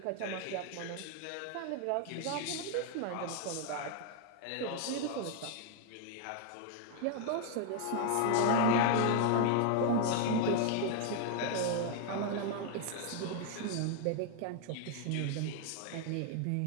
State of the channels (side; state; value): both; different; correlation 0.00